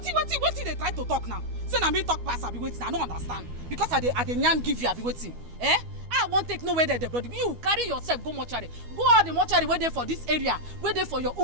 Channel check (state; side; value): late; left; 12 ms